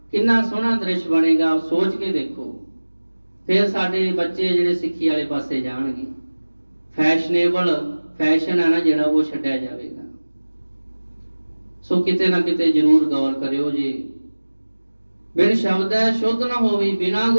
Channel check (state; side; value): inverted; both; correlation -1.00